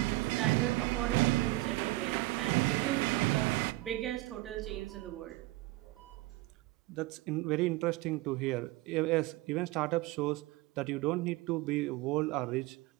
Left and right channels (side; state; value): left; quieter; 19.9 dB